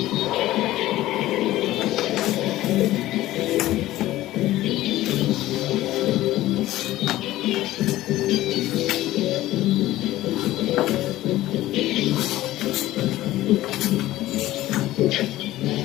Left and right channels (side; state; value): right; quieter; 15.7 dB